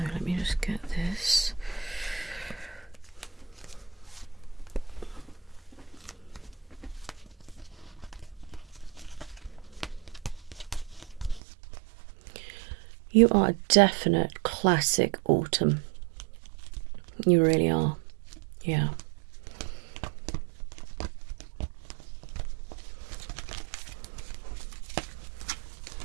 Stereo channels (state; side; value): drops out; left; at 11.4 s